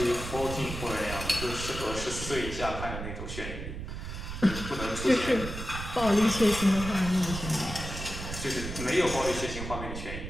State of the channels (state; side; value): noise; right; rumble, 7 dB below the sound